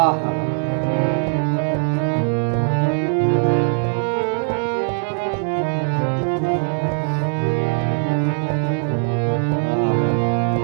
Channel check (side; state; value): left; silent; digital silence